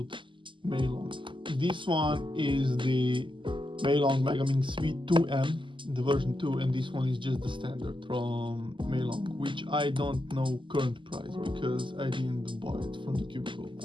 MeiLong. This one is the MeiLong Milong V2M, the version 2, and this one is just the standard from MeiLong, which I don't know current price because I didn't buy it from the cubicle.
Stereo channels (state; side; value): late; left; 0.24 ms